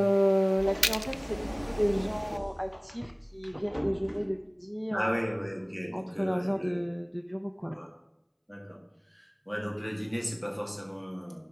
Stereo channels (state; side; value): identical; both; correlation 1.00